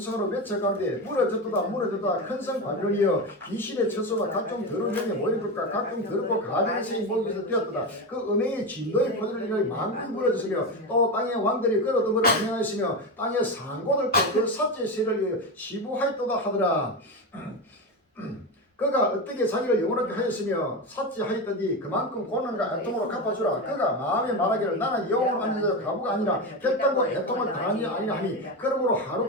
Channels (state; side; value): normal; both; correlation 0.18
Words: 외쳐가는데 무너졌도다 무너졌다 큰성 바빌론이여 귀신의 처소가 각종 더러운 영에 모인 것과 각종 더럽고 가증의 생이 모임에서 되었도다. 그 음행의 진노의 포도를 인하여 만국이 무너졌으며 또 땅의 왕들이 끌어들임을 안행하였으며 땅의 상고들 그 삭제 세를 위하여 시부하였도다 하더라. 그가 어떻게 자기를 영원하게 하였으며 삭제하였더니 그만큼 고난과 애통으로 갚아주라. 그가 마음에 말하기를 나는 영원으로 앉아서 가부가 아니라 결단과 애통을 당하니 아니라 하니 그러므로 하루